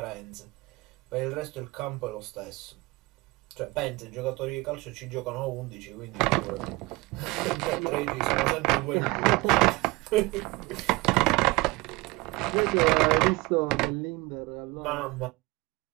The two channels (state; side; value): quieter; left; 23.0 dB